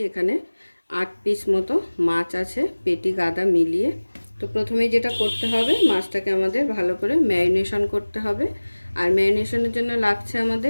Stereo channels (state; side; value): inverted; both; correlation -1.00